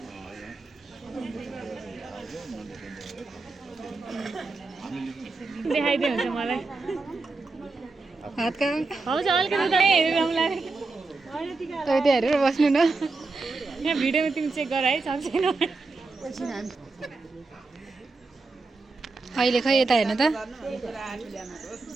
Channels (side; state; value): left; quieter; 3.7 dB